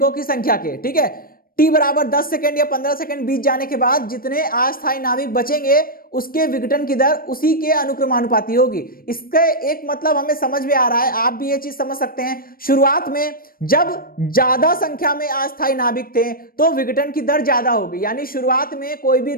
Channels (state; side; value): late; right; 0.42 ms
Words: की संख्या के। ठीक है, t बराबर 10 सेकंड या 15 सेकंड बीत जाने के बाद जितने अस्थायी नाभिक बचेंगे उसके विघटन की दर उसी के अनुक्रमानुपाती होगी। इसका एक मतलब हमें समझ में आ रहा है, आप भी ये चीज समझ सकते हैं। शुरुआत में जब ज्यादा संख्या में अस्थायी नाभिक थे तो विघटन की दर ज्यादा होगी, यानी शुरुआत में कोई भी